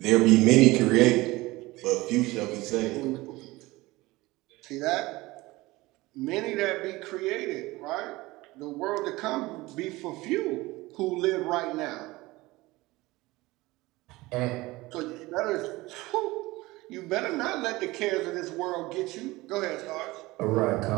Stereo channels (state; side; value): quieter; left; 20.4 dB